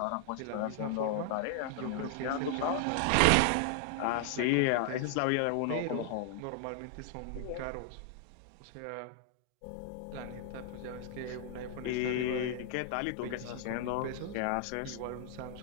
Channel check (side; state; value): both; different; correlation 0.00